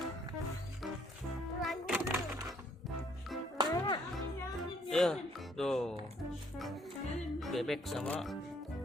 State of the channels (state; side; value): normal; both; correlation 0.65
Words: Ya, tuh. Bebek sama